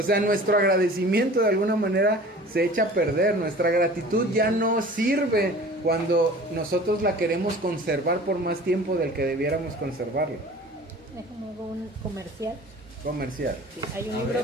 sea, nuestro agradecimiento de alguna manera se echa a perder. Nuestra gratitud ya no sirve cuando nosotros la queremos conservar por más tiempo del que debiéramos conservarla. Déjame hago un comercial. Sí, hay un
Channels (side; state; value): both; normal; correlation 0.43